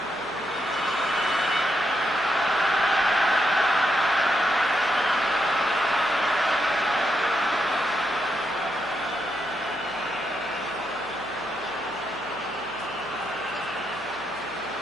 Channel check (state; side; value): noise; right; hum, 24 dB below the sound